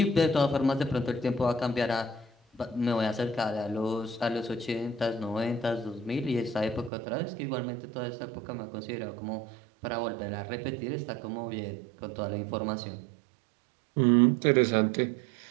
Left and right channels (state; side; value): drops out; left; at 6.9 s